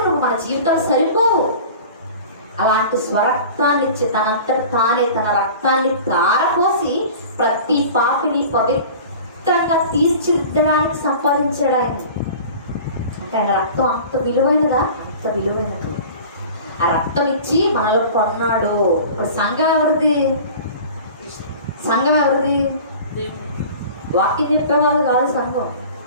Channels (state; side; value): inverted; both; correlation -0.40